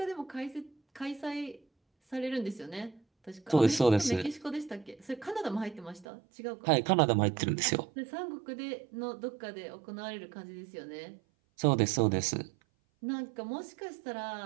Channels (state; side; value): drops out; left; at 6.1 s